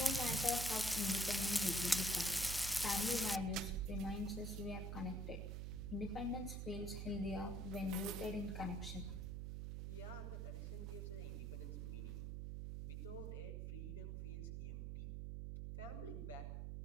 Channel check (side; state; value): right; noise; hum, 3 dB below the sound